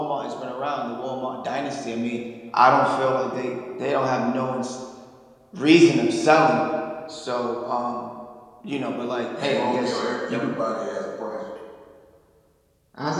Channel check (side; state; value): both; identical; correlation 1.00